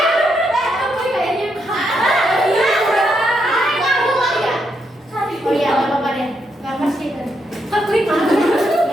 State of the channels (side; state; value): both; normal; correlation 0.79